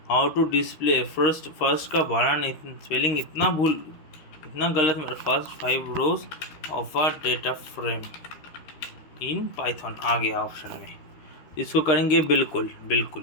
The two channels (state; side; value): late; right; 13 ms